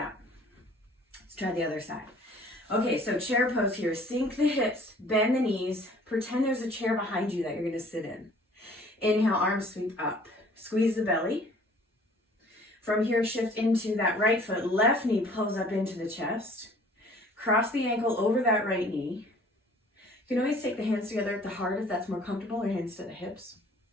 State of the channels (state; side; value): normal; both; correlation 0.53